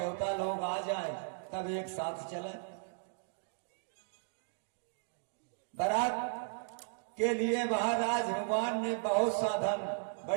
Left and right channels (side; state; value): left; silent; digital silence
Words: लोग आ जाएं तब एक साथ चले। बारात के लिए महाराज हनुमान ने बहुत साधन,